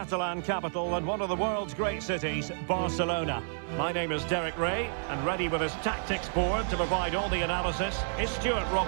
capital and one of the world's great cities, Barcelona. My name is Derek Ray, and ready with his tactics board to provide all the analysis is Stuart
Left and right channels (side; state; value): left; silent; 58 dB below the other